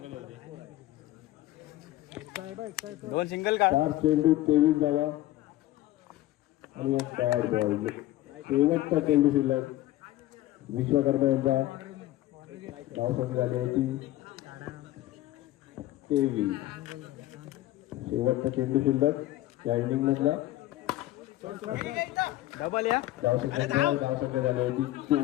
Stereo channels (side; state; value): right; quieter; 15.5 dB